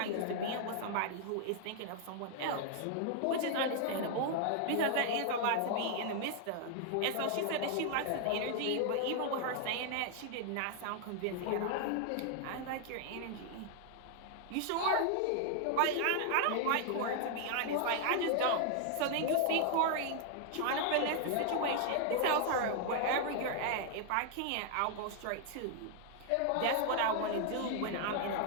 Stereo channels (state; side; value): different; both; correlation 0.00